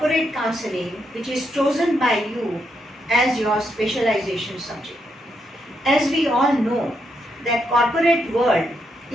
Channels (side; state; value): both; normal; correlation 0.80